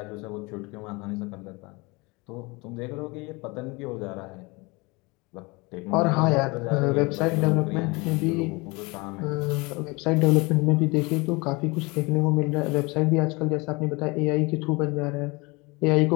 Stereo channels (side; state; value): right; quieter; 25.9 dB